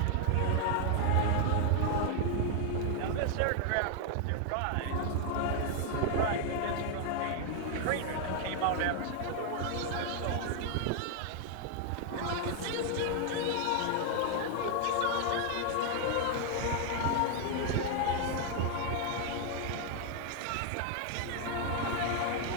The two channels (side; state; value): both; different; correlation 0.00